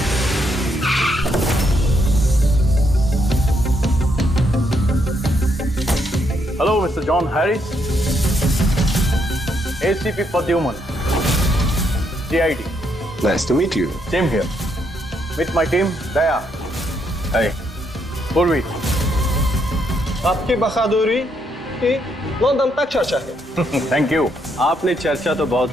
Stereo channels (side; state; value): both; normal; correlation 0.75